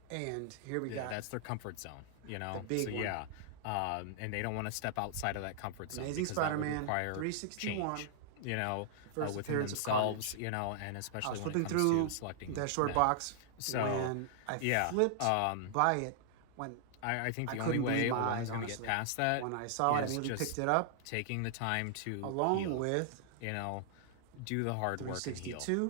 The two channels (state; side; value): different; both; correlation -0.01